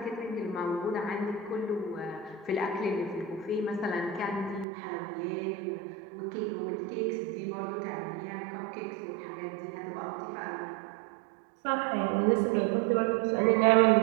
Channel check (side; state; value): left; drops out; at 4.7 s